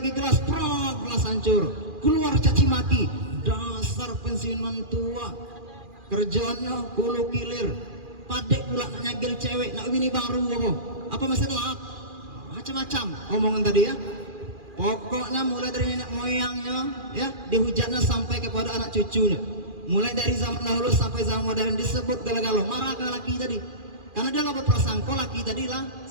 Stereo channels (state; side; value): late; left; 2.4 ms